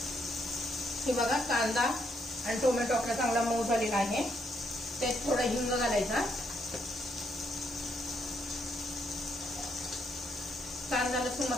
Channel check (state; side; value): normal; both; correlation 0.75